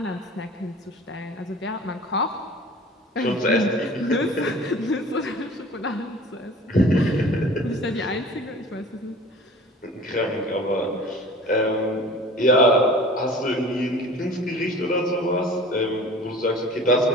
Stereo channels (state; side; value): normal; both; correlation 0.43